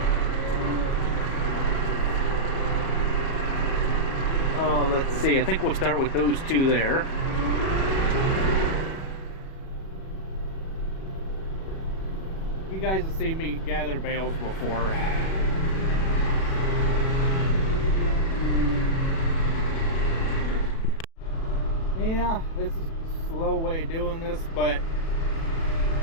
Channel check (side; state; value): right; late; 37 ms